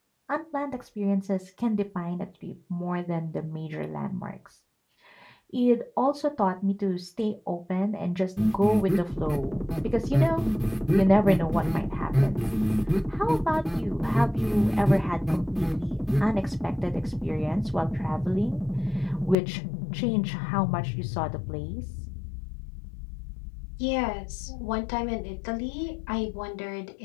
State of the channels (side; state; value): right; drops out; at 19.4 s